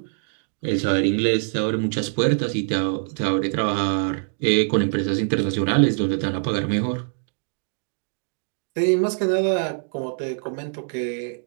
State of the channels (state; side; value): silent; left; digital silence